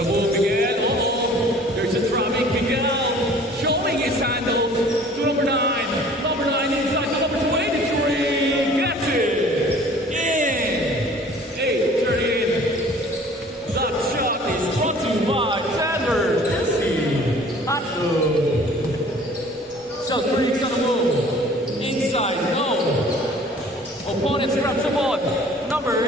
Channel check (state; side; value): normal; both; correlation 0.50